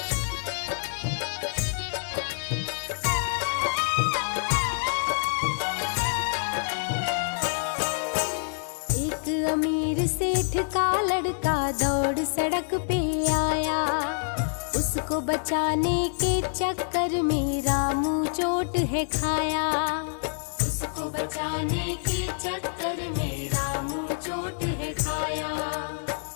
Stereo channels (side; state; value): right; silent; digital silence